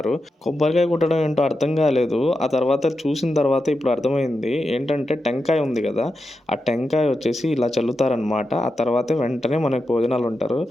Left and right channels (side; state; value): both; normal; correlation 0.89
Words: కొబ్బరికాయ కొట్టడం ఏంటో అర్థం కాలేదు. ఆ తర్వాత చూసిన తర్వాత ఇప్పుడు అర్థమైంది. ఏంటంటే టెంకాయ ఉంది కదా, ఆ టెంకాయ వచ్చేసి ఇలా చల్లుతారనమాట. ఆ తర్వాత వెంటనే మనకు భోజనాలు ఉంటారు.